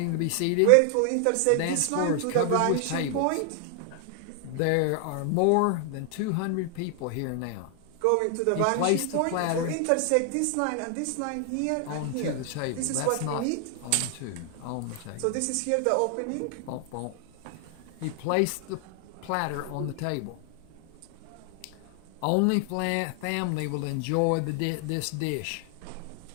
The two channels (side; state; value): both; different; correlation 0.00